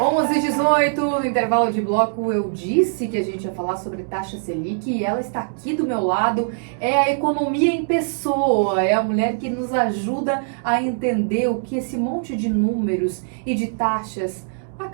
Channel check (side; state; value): left; silent; digital silence